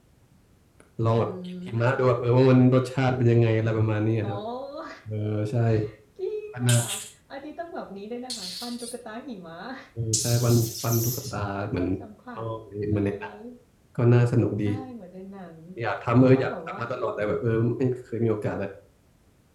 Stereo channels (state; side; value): identical; both; correlation 1.00